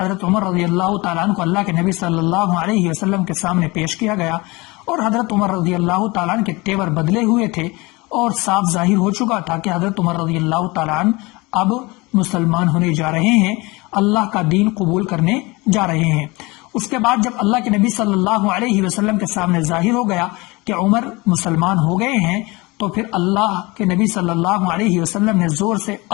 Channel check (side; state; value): right; quieter; 24.2 dB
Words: عمر رضی اللہ تعالیٰ عنہ کو اللہ کے نبی صلی اللہ علیہ وسلم کے سامنے پیش کیا گیا اور حضرت عمر رضی اللہ تعالیٰ عنہ کے تیور بدلے ہوئے تھے اور صاف ظاہر ہو چکا تھا کہ حضرت عمر رضی اللہ تعالیٰ عنہ اب مسلمان ہونے جا رہے ہیں، اللہ کا دین قبول کرنے جا رہے ہیں۔ اس کے بعد جب اللہ کے نبی صلی اللہ علیہ وسلم کے سامنے ظاہر ہو گیا کہ عمر مسلمان ہو گئے ہیں، تو پھر اللہ کے نبی صلی اللہ علیہ وسلم نے زور سے